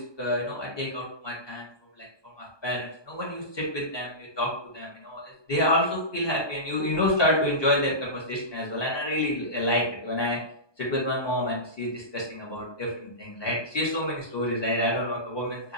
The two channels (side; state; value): right; late; 1.2 ms